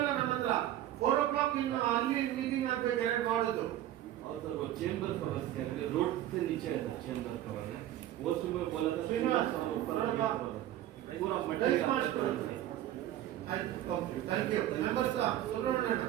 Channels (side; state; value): left; quieter; 13.0 dB